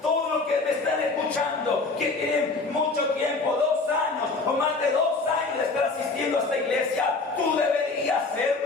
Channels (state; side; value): quieter; right; 3.8 dB